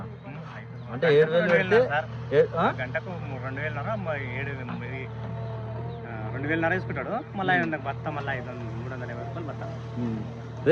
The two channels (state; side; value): identical; both; correlation 1.00